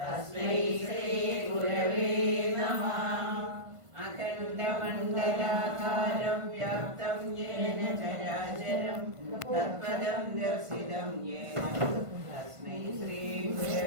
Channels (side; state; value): left; late; 1.5 ms